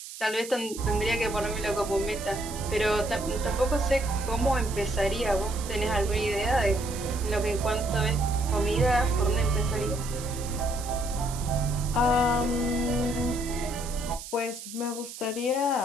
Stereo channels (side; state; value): right; noise; hiss, 12 dB below the sound